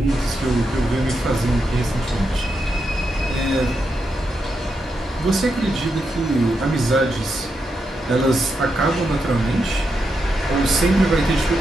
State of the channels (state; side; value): normal; both; correlation 0.84